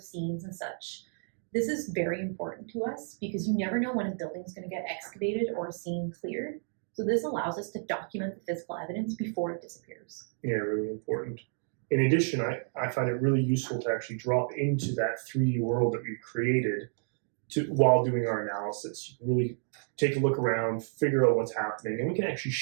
scenes and such. This is very important to us because you never know when a building is going to get excavated or a scene cleared. So this allows us to document the physical evidence before it disappears. Yeah, really important. In addition, I find it really useful to actually drop into that 3D world that we've created while doing our analysis. You can really take a look around, figure out what's happening, and we can actually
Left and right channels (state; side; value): silent; left; 57 dB below the other